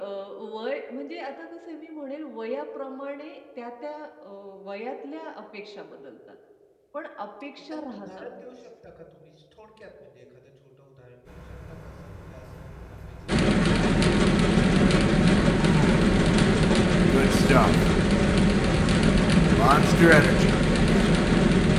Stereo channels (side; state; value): both; identical; correlation 1.00